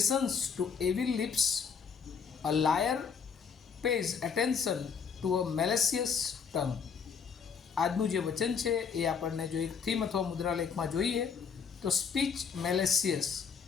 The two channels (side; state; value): right; quieter; 6.3 dB